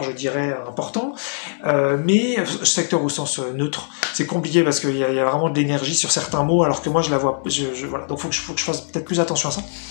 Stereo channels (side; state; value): right; silent; digital silence